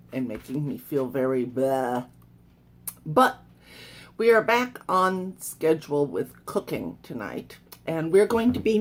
making me feel very blah. But we are back on schedule with cooking tonight, and we're going to be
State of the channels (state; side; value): identical; both; correlation 1.00